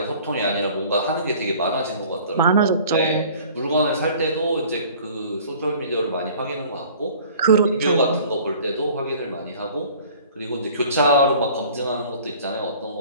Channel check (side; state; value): both; inverted; correlation -0.49